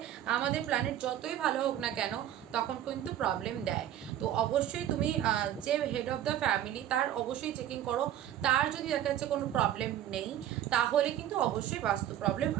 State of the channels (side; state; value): left; quieter; 11.6 dB